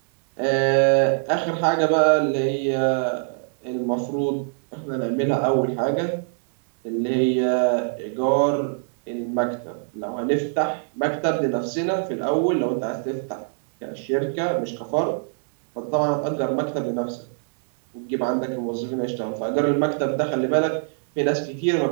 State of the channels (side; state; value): left; silent; 63 dB below the other